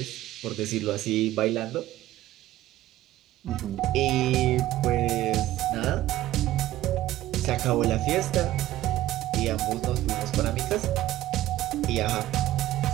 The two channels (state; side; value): quieter; left; 14.9 dB